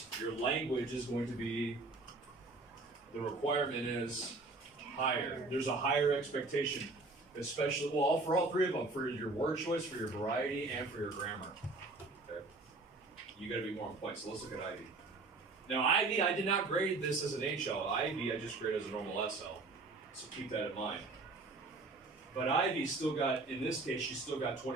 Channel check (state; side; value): quieter; left; 3.5 dB